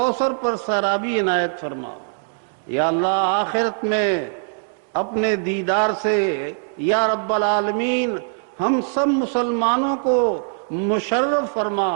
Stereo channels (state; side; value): silent; left; digital silence